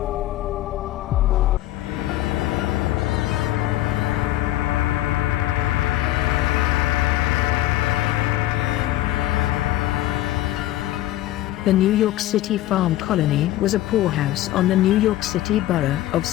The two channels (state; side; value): quieter; right; 14.9 dB